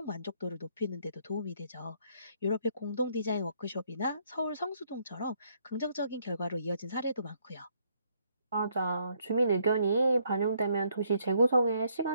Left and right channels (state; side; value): inverted; both; correlation -0.69